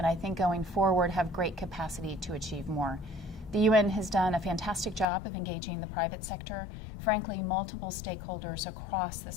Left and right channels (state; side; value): drops out; right; at 5.1 s